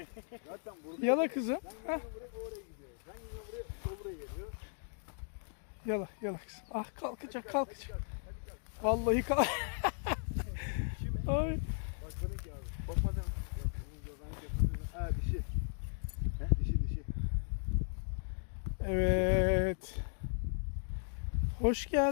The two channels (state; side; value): silent; right; digital silence